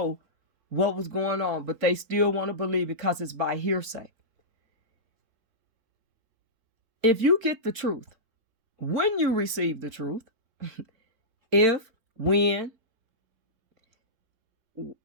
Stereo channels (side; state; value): left; late; 4.3 ms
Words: what was going on, but they still want to believe because it's by hearsay. If you get the truth, when you receive the truth, when,